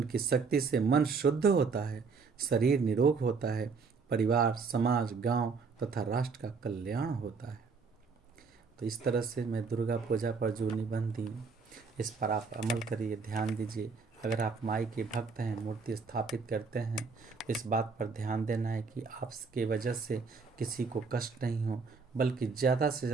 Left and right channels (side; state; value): left; quieter; 4.9 dB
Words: शक्ति से मन शुद्ध होता है, शरीर निरोग होता है, परिवार, समाज, गांव तथा राष्ट्र का कल्याण होता है। तो इस तरह से मैं दुर्गा पूजा पर जो निबंध दी, इस पर आप अमल करिए, ध्यान दीजिए। अगर आप माई के भक्त हैं, मूर्ति स्थापित करते हैं, तो इस बात पर ध्यान देना है कि आपके वजह से किसी को कष्ट नहीं हो, बल्कि ज़्यादा से